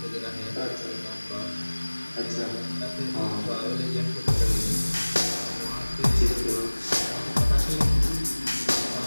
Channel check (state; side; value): inverted; both; correlation -1.00